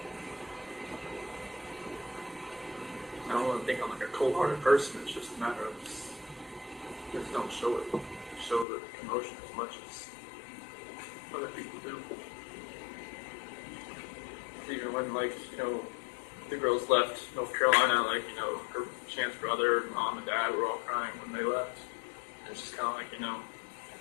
I don't want to think I'm like a cold-hearted person. It's just a matter of just don't show it. Show the emotion as much as other people do. Even when, like, the girls left North Carolina, like, her Chance brother, mom, and dad were all crying when they left. And it's just kind of like,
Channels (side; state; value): right; drops out; at 8.7 s